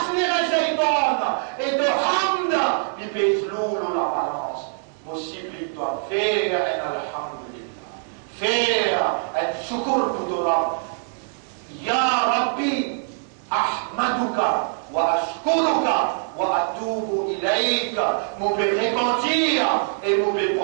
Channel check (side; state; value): left; silent; digital silence